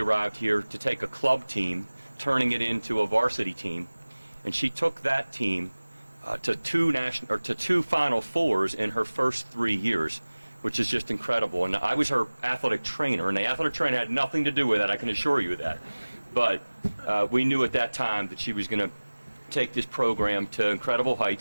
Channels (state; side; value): inverted; both; correlation -1.00